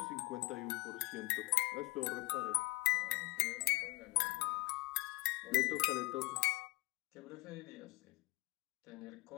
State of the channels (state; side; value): quieter; right; 23.3 dB